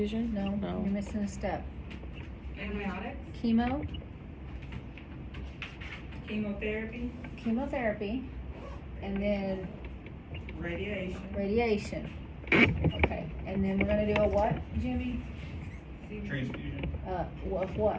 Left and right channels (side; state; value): both; identical; correlation 1.00